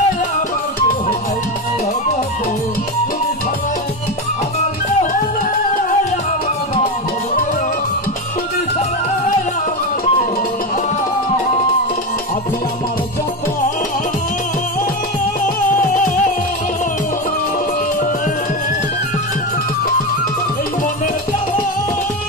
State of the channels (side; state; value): both; normal; correlation 0.16